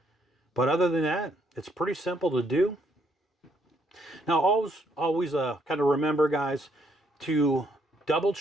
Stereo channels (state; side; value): normal; both; correlation 0.71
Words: But other than that, it's pretty simple to do. Now, always kind of remember, guys, to double